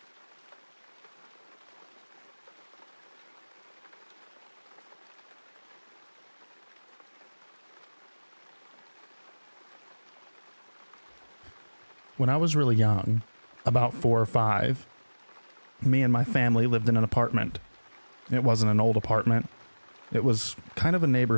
When I was really young, about 4 or 5, me and my family lived in an apartment. It wasn't an old apartment. It was kind of a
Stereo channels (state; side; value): inverted; both; correlation -1.00